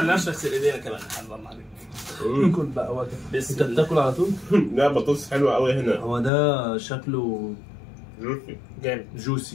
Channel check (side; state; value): right; drops out; at 6.3 s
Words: نغسل ايدينا كمان. الله عليك. كل بقى وقت انت بتاكل على طول. لا بطاطس حلوه قوي هنا. هو ده شكله جامد